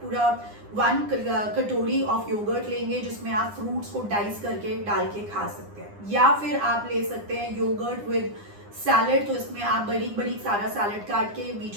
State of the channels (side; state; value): left; late; 9.8 ms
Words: पूरा 1 कटोरी ऑफ योगर्ट लेंगे जिसमें आप फ्रूट्स को डाइस करके डाल के खा सकते हैं। या फिर आप ले सकते हैं योगर्ट विद सैलेड, तो इसमें आप बड़ी बड़ी सारा सैलेड काट के